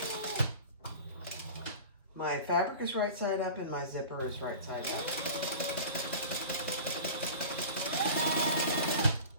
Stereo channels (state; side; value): inverted; both; correlation -0.36